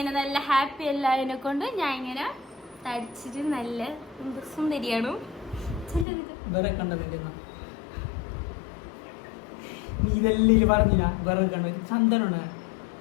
നല്ല ഹാപ്പി എല്ലാതിനെ കൊണ്ട് ഞാൻ ഇങ്ങനെ തടിച്ചിട്ട് നല്ല സുന്ദരിയാണ്.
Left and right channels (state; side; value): drops out; right; at 6.1 s